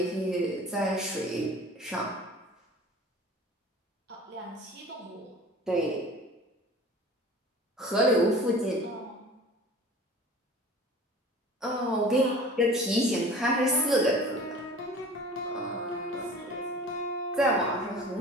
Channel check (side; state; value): both; normal; correlation 0.42